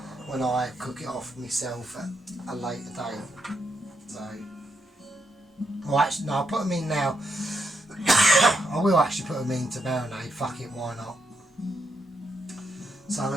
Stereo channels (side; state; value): both; normal; correlation 0.80